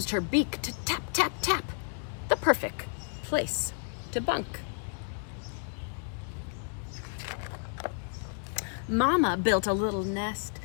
her beak to tap, tap, tap. The perfect place to bunk. Mama built a little nest,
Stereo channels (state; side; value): silent; right; 56 dB below the other